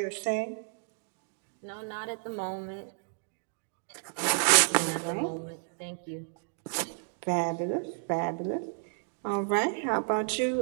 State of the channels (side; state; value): left; silent; 57 dB below the other